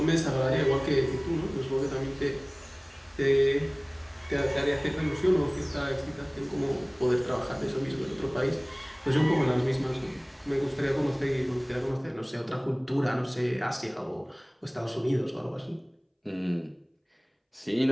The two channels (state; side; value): identical; both; correlation 1.00